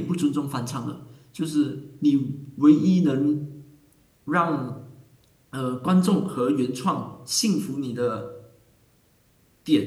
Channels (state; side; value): identical; both; correlation 1.00